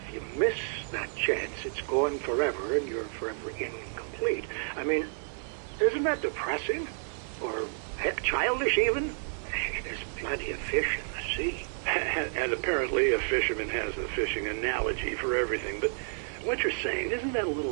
you miss that chance, it's gone forever, and you're forever incomplete. I mean, isn't that depressing? Or heck, childish even? There's plenty of fish in the sea. And apparently a fisherman has a fishing analogy for everything, but what you're saying, isn't that a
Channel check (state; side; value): silent; left; digital silence